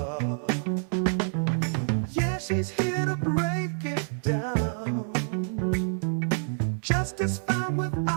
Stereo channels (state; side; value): silent; left; digital silence